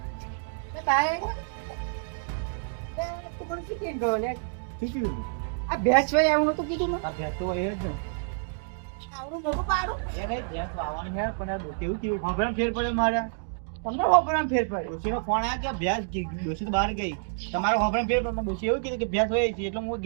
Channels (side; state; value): left; silent; digital silence